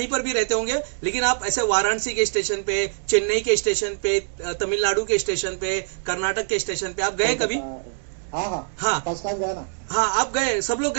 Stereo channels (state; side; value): silent; left; digital silence